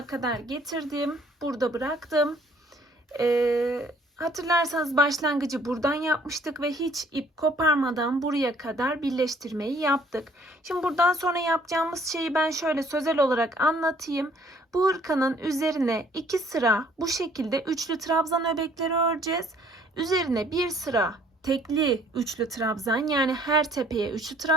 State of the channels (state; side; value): normal; both; correlation 0.60